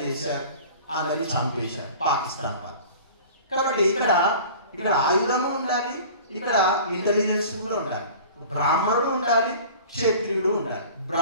చేశారు, అందరినీ చంపేశారు పాకిస్తాన్ వాళ్ళు. కాబట్టి ఇక్కడ ఆయుధము ఉండాలి, ఇక్కడ ఇంటెలిజెన్స్ కూడా ఉండాలి, బ్రాహ్మణుడు ఉండాలి, క్షత్రియుడు ఉండాలి.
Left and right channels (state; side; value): inverted; both; correlation -0.42